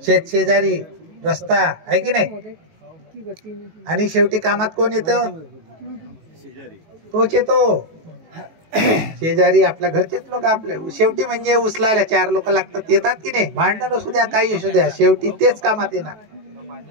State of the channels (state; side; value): late; left; 18 ms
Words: शेजारी, रस्ता, आहे की नाही? आणि शेवटी कामात कोण येतं? तोच येतो, शेजारी, आपल्या घरचेच लोक। आपले शेवटी म्हणजे उचलायला 4 लोक लागतात, येतात की नाही? भांडण असू द्या, काही असू द्या, शेवटी तेच कामात येणार।